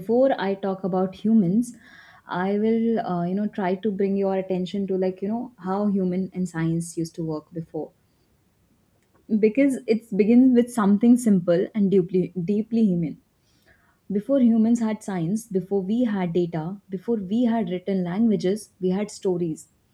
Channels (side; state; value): both; identical; correlation 1.00